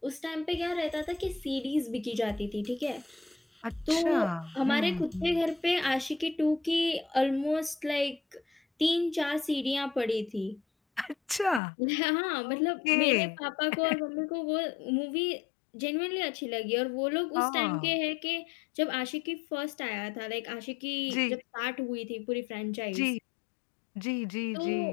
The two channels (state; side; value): drops out; right; at 11.6 s